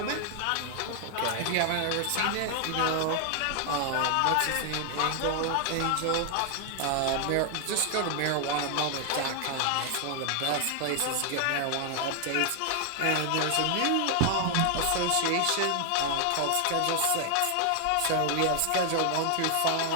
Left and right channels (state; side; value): different; both; correlation 0.00